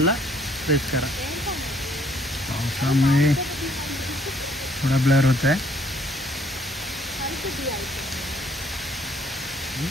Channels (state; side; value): normal; both; correlation 0.64